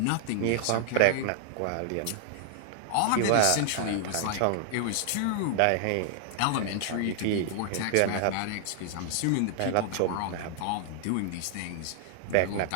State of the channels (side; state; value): both; different; correlation 0.00